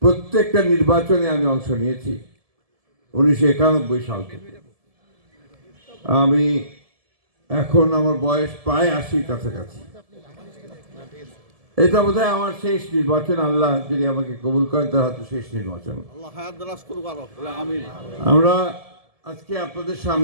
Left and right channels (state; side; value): late; left; 1.7 ms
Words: প্রত্যেকটা নির্বাচনে আমি অংশ নিয়েছি 1991 সাল থেকে। আমি এখন আমার বয়স প্রায় 80 কাছাকাছি। এটা বোধহয় আমার শেষ নির্বাচন, আল্লাহ যদি আমাকে কবুল করেন তার হয়তো শেষ নির্বাচন। আমরা আজকে আপনাদের